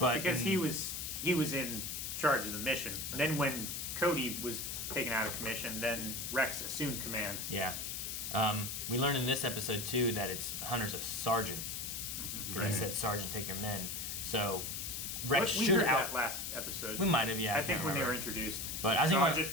because he was in charge of the mission. Then when Cody was taken out of commission, then Rex assumed command. Yeah. We learned in this episode too that Hunter's a sergeant, because he said, "Sergeant, take your men." So Rex We should heard that last episode. We might have, yeah. I think can't when they were remember. introduced. But I was thinking about-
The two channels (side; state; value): left; noise; hiss, 4 dB below the sound